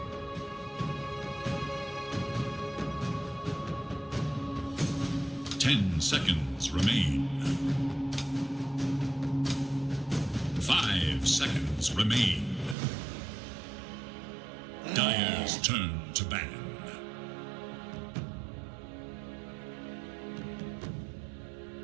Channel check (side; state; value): left; drops out; at 12.8 s